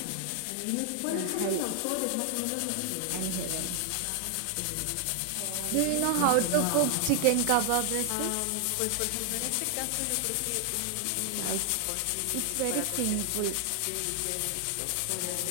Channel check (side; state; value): both; different; correlation 0.00